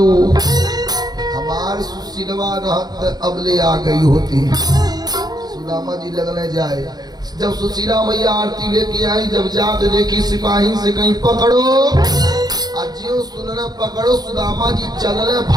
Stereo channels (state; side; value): late; left; 0.19 ms